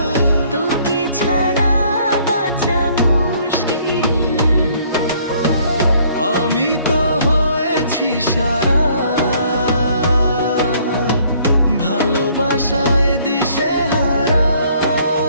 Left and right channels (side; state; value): both; inverted; correlation -0.62